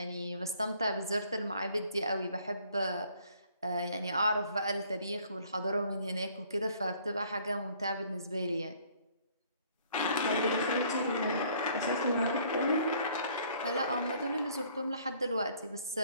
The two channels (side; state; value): both; inverted; correlation -0.60